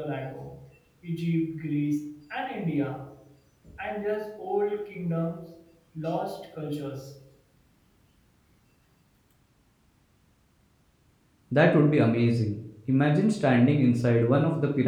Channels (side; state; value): both; identical; correlation 1.00